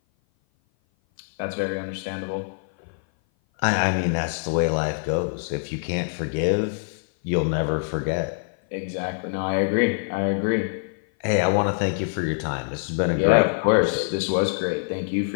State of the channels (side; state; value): right; silent; 57 dB below the other